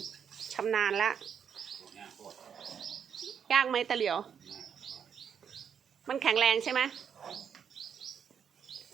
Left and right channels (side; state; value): left; quieter; 7.7 dB